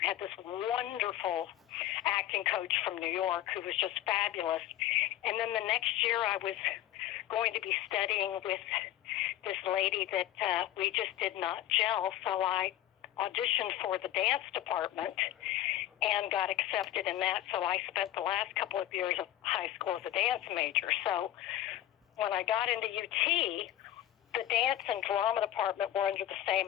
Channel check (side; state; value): right; quieter; 12.8 dB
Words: I had this wonderful acting coach from New York who was just fabulous. And then the next year I was going to be studying with this lady that we just did not gel. So I auditioned for the dance department and got accepted in that. So I spent the last couple of years of high school as a dance major. So when I got into UT, the dance and drama department were under the